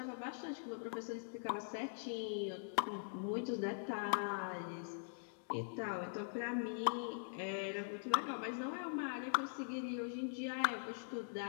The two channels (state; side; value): silent; right; digital silence